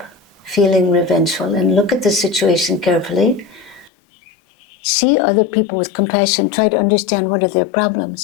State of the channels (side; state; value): right; drops out; at 3.9 s